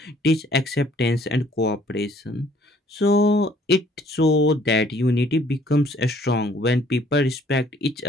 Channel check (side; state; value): both; normal; correlation 0.60